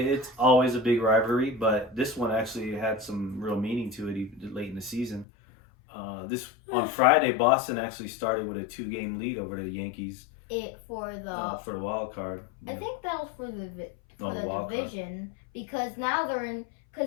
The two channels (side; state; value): right; drops out; at 5.2 s